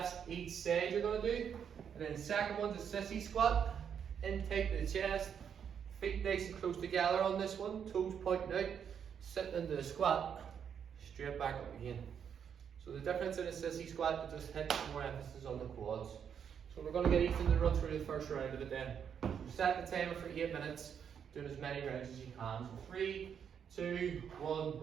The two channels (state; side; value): quieter; left; 7.8 dB